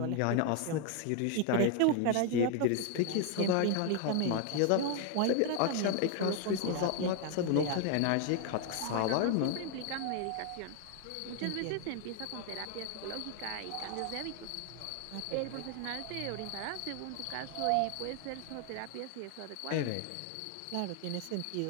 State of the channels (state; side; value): different; both; correlation 0.00